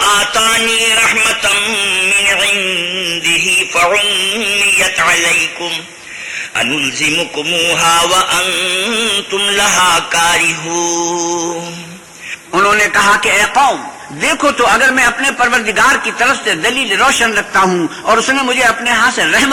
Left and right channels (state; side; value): identical; both; correlation 1.00